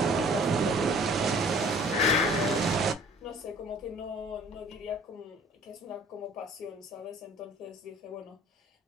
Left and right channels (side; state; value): both; normal; correlation 0.52